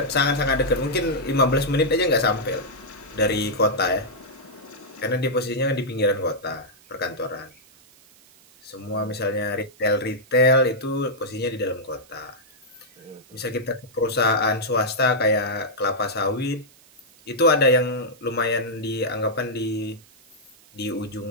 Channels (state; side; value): noise; right; hiss, 27 dB below the sound